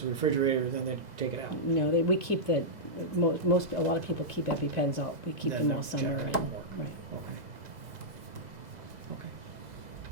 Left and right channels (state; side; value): late; left; 2.0 ms